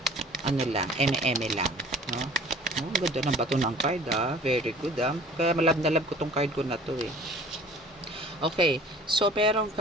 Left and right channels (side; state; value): both; normal; correlation 0.48